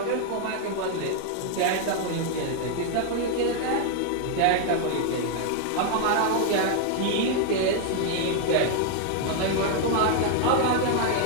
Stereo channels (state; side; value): different; both; correlation 0.00